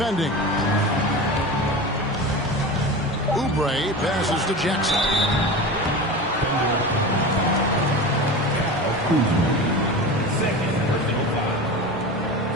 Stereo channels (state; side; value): normal; both; correlation 0.29